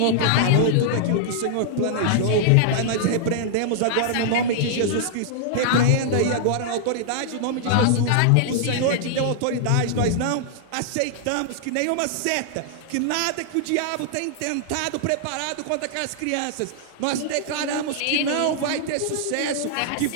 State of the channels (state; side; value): different; both; correlation -0.01